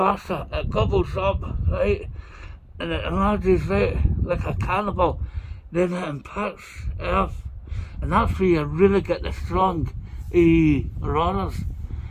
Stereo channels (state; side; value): identical; both; correlation 1.00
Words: it gobbles up, right? And it enlarges, right, like a cannibal. Then it impacts Earth, and that's where you really get the strong auroras,